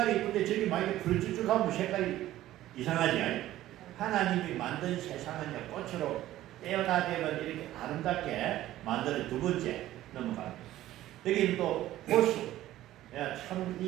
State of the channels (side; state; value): left; quieter; 14.4 dB